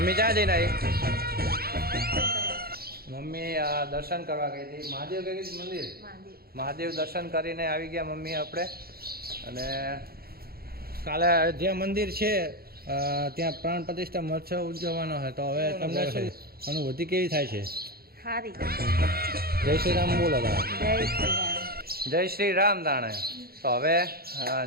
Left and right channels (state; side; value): late; left; 0.44 ms